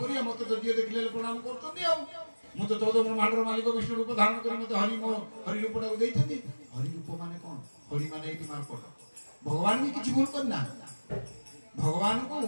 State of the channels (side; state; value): both; inverted; correlation -1.00